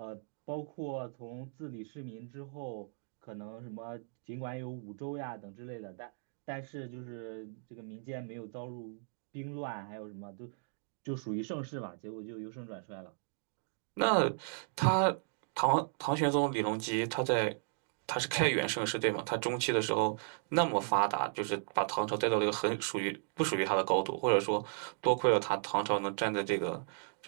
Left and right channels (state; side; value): silent; left; digital silence